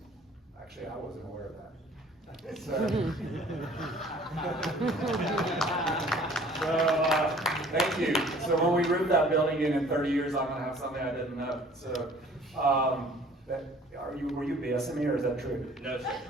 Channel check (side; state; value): both; normal; correlation 0.52